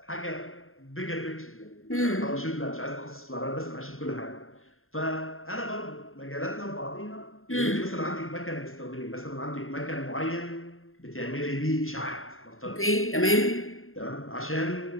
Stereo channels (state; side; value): late; right; 0.61 ms